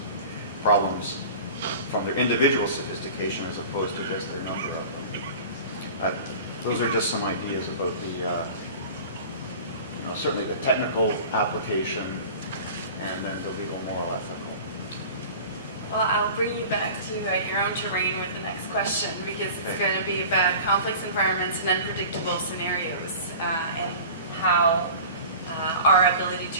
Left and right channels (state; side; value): inverted; both; correlation -0.39